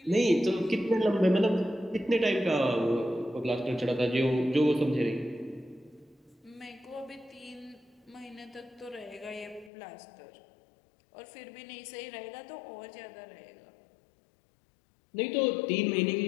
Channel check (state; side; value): drops out; right; at 9.7 s